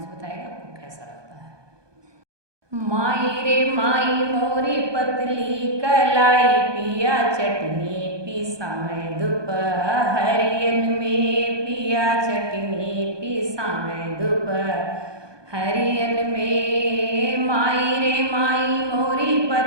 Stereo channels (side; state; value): left; late; 1.2 ms